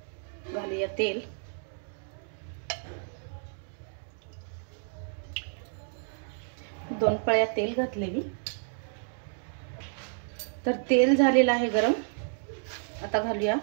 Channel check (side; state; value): left; silent; 57 dB below the other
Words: घालूया तेल। दोन पळ्या तेल घातलेली। तर तेल झालेलं आहे गरम। आता घालूया